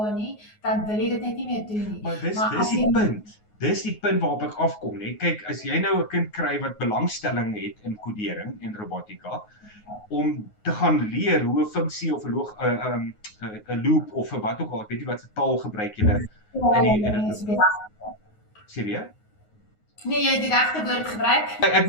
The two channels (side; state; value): right; late; 9.5 ms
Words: nie, dan wil jy dit net nie meer doen nie. Maar dis die punt. Dis die punt waarop ek afkom, nee. Kyk, as jy nou 'n kind kry wat belangstelling het in kodering en robotika, om te gaan leer hoe 'n funksie of 'n loop of wat ook al, ek weet nie wat se taal gebruik julle in die sê weer? Nee, jy het die regte woord gebruik. Ek